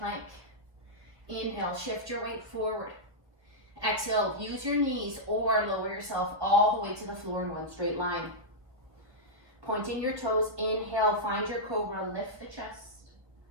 Inhale, shift your weight forward. Exhale, use your knees or lower yourself all the way to the floor in 1 straight line. Pointing your toes, inhale, find your cobra, lift the chest.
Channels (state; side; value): late; left; 1.2 ms